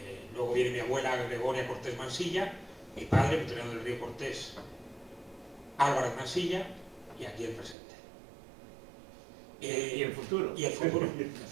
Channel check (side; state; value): left; drops out; at 7.8 s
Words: Luego viene mi abuela Gregoria Cortés Mansilla, mi padre, Victoriano del Río Cortés, Álvarez Mansilla, y aquí el presente. ¿Y el futuro? Y el futuro,